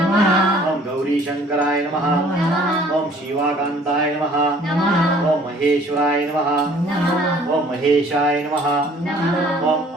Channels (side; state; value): both; normal; correlation 0.55